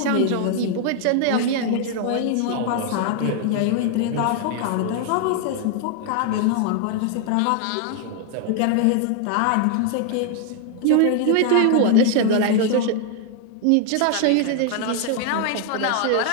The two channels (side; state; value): both; different; correlation 0.00